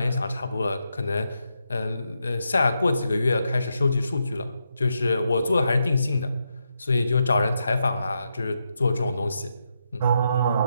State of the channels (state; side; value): inverted; both; correlation -0.83